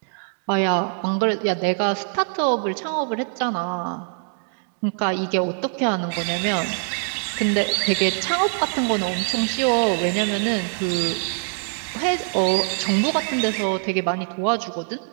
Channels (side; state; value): left; silent; 61 dB below the other